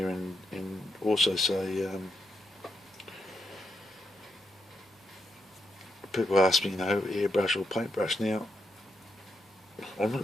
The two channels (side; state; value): both; normal; correlation 0.82